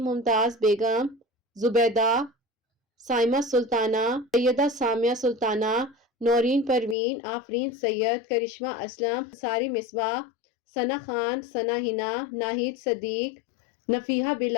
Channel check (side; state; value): right; drops out; at 7.0 s